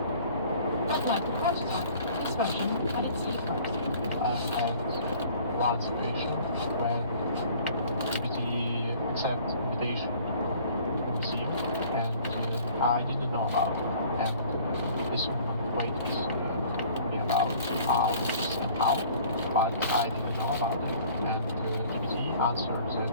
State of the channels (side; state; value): both; inverted; correlation -0.51